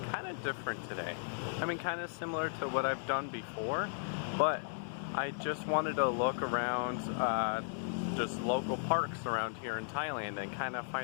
kind of different today. I mean, kind of similar to what I've done before, but I just wanted to look around just local parks around here in Thailand and kind of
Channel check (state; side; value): silent; right; digital silence